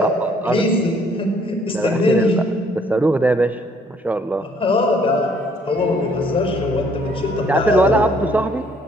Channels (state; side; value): normal; both; correlation 0.63